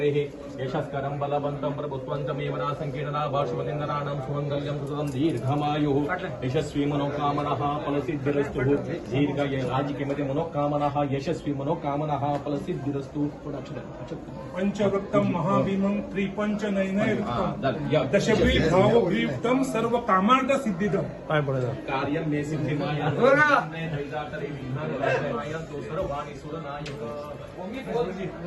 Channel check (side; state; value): both; identical; correlation 1.00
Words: यशस्करं बलवन्तं प्रभुत्वन्तमेवना संकीर्णना भाषवलिन्दनानां सुमङ्गल्यं सुततं दीर्घमायुः यशस्वी मनोकामनाः फलसिद्धिरस्तु दीर्घ राजकीयमध्ये मनोकामनाः यशस्वी मनोकामनाः फलसिद्धिरस्तु. पंचवक्तं महाभीमं त्रिपंचनयनयुक्तं दशग्रीवभावग्रीवं सर्वकामार्थ सिद्धिदं. काय बोलायचं कार्यं मे सिद्धिमाया सर्वाणि सुरनायक